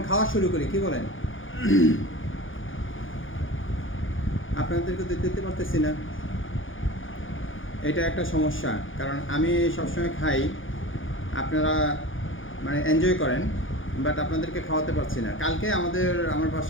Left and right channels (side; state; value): right; late; 0.58 ms